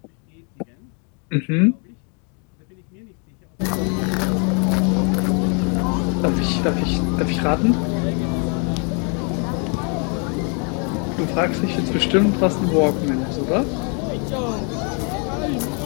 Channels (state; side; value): quieter; right; 37.8 dB